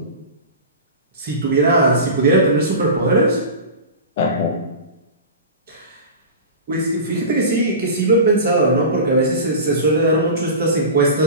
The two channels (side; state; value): both; inverted; correlation -0.31